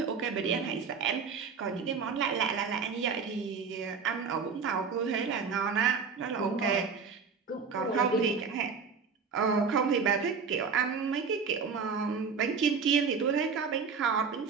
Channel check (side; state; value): left; quieter; 5.6 dB